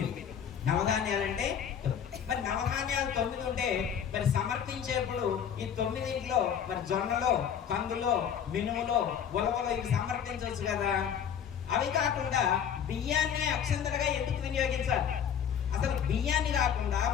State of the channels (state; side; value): quieter; right; 8.3 dB